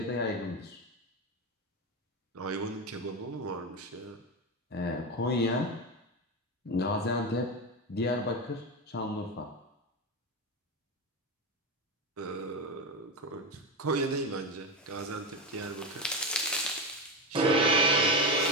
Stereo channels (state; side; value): normal; both; correlation 0.15